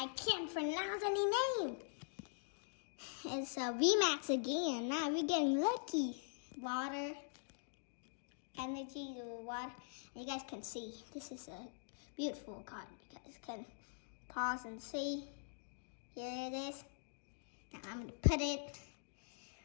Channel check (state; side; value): silent; right; digital silence